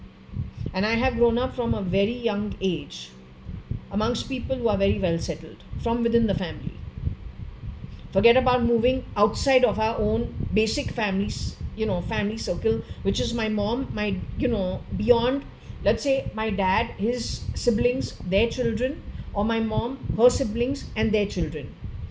And I have grown up from a very young age amongst people who are very well settled from within the family. Forget about moving outside of our own basic families, family circle, which is my mom, beyond, let's say my dad, his siblings, their children, or my mom, her siblings and their children.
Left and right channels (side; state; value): both; identical; correlation 1.00